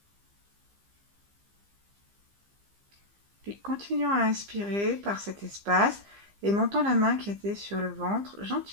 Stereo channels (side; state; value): left; late; 15 ms